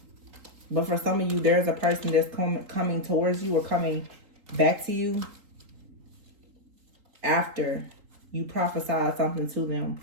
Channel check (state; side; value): late; left; 3.8 ms